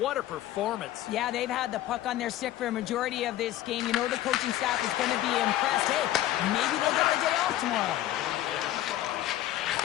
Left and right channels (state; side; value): quieter; right; 13.9 dB